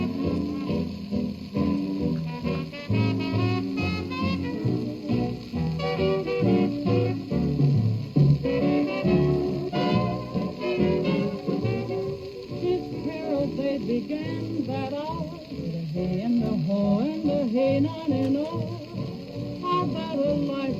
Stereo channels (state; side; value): identical; both; correlation 1.00